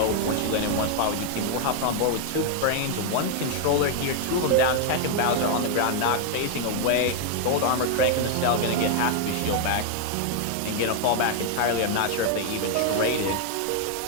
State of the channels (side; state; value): both; different; correlation 0.00